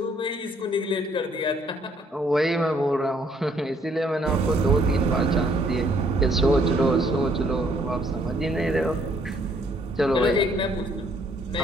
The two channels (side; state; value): both; normal; correlation 0.66